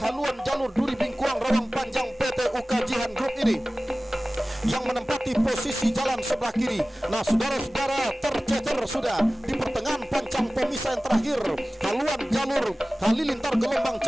haluan jalur Duri Bingkuang Rawang Panjang PT Ukajihan Group ini yang menempati posisi jalan sebelah kiri. Nah saudara-saudara, tercecer sudah di pertengahan pancang pemisah yang terakhir haluan jalur Halilintar Gelombang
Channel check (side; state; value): both; normal; correlation 0.97